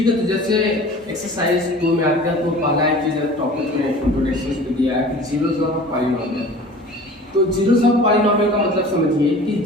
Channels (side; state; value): both; normal; correlation 0.42